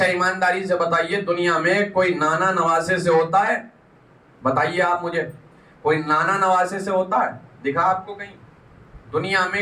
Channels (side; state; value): both; identical; correlation 1.00